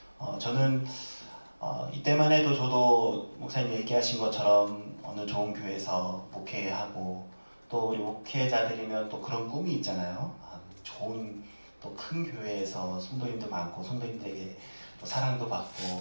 저는 이때만 해도 저도 목사님 얘기하신 것처럼 어느 좋은 교회에서 목회하고 또 우리 목회자들이면 또 그런 꿈이 있잖아요. 좋은 또 큰 교회에서 성도님도 많고 성도님들에게 또 사랑도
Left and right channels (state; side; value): inverted; both; correlation -1.00